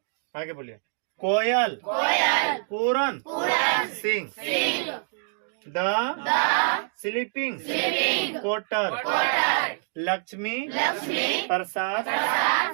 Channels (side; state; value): left; silent; 61 dB below the other